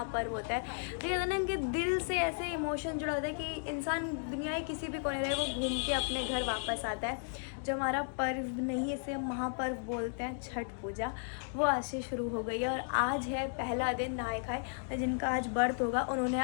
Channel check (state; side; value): silent; right; digital silence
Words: होता है, तो कहते हैं ना कि दिल से ऐसे इमोशन जुड़ा होता है कि इंसान दुनिया के किसी भी कोने रहे वो घूम के अपने घर वापस आता है। जो हमारा पर्व नहीं, इसे महापर्व बोलते हैं, छठ पूजा, वो आज से शुरू हो गई है। और आज है पहला दिन नहाए खाए। जिनका आज व्रत होगा उन्होंने